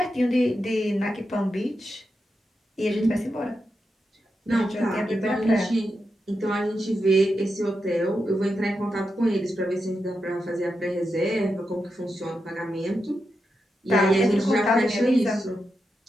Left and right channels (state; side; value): normal; both; correlation 0.87